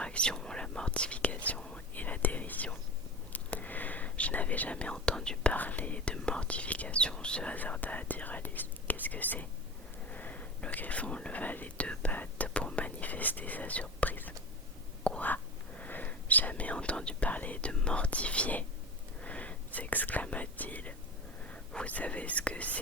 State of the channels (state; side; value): normal; both; correlation 0.28